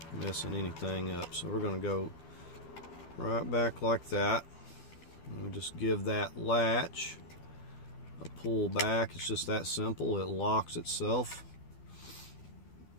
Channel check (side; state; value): right; late; 12 ms